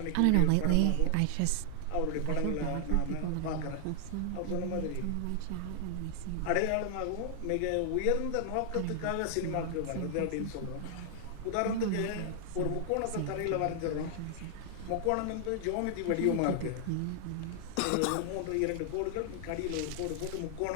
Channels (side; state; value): both; different; correlation 0.00